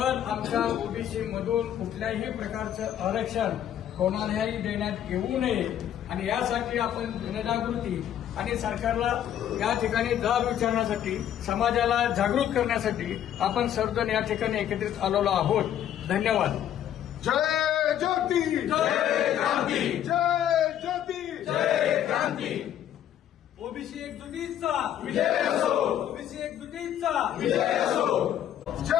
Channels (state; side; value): quieter; right; 10.6 dB